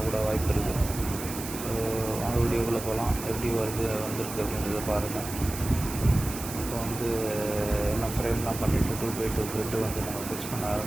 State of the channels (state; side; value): noise; right; hiss, 9 dB below the sound